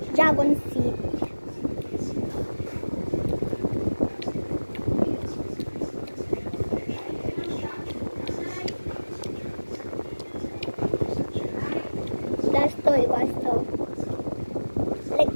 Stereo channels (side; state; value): both; inverted; correlation -1.00